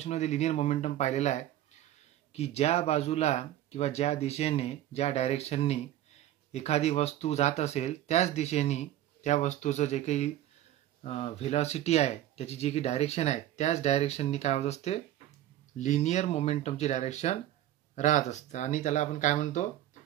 मध्ये linear momentum पाहिलेला आहे की ज्या बाजूला किंवा ज्या दिशेने ज्या डायरेक्शननी एखादी वस्तू जात असेल त्याच दिशेने त्या वस्तूचं जे काही व्हेलॉसिटी आहे त्याची जी काही डायरेक्शन आहे त्याच डायरेक्शननी काय होत असते लिनियर मोमेंटमची डायरेक्शन राहत असते आणि त्याला आपण काय म्हणतो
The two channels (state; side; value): quieter; left; 13.0 dB